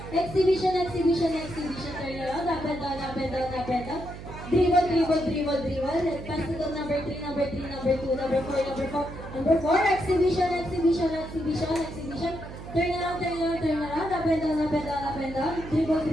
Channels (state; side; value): noise; right; hum, 12 dB below the sound